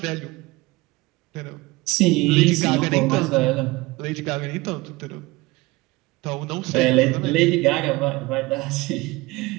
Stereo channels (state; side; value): quieter; left; 21.6 dB